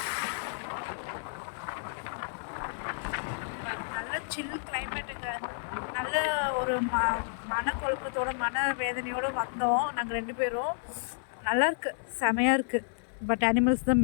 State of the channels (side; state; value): right; silent; digital silence